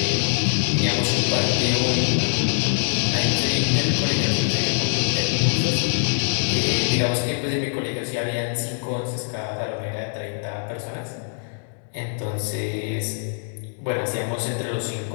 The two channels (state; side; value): silent; right; digital silence